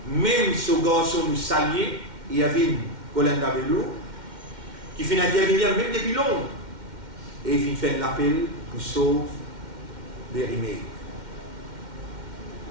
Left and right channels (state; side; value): late; left; 2.1 ms